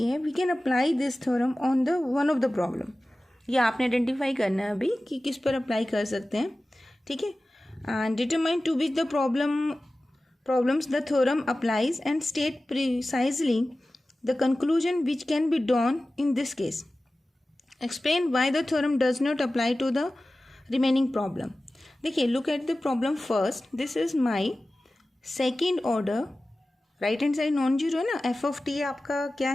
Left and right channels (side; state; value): both; normal; correlation 0.96